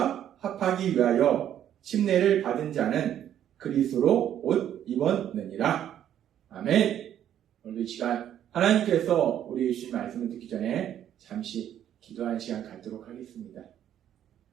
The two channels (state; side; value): quieter; left; 10.6 dB